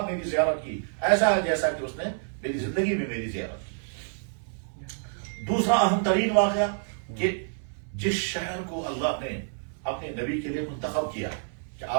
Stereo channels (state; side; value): silent; left; 59 dB below the other